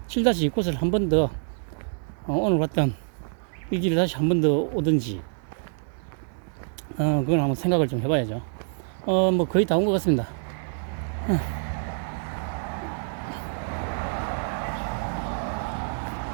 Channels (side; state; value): left; silent; digital silence